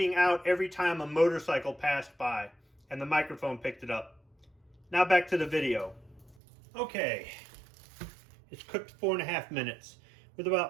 out every time a motorcycle passed by and the microphone picked it up. Now back to the video. Okay, it's cooked 4.5 minutes. With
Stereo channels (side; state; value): left; drops out; at 6.4 s